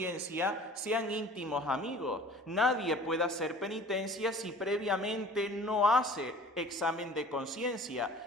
sean íntimos amigos. Nadie puede hacer penitencia si previamente no hace examen de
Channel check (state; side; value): normal; both; correlation 0.46